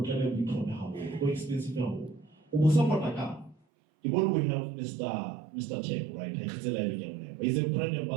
bitome how go expensive how. Ubusapotaka. The one we have Mr. Tech, right? He's a brand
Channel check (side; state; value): left; drops out; at 3.6 s